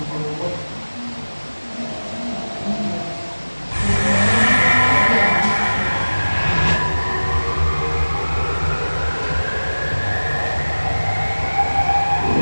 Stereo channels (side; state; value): both; inverted; correlation -1.00